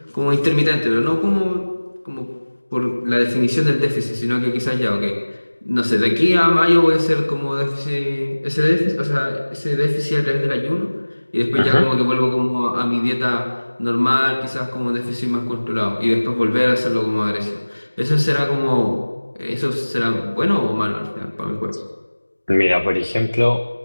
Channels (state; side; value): inverted; both; correlation -1.00